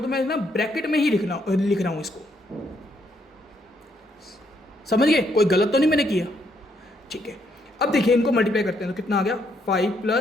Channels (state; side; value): normal; both; correlation 0.73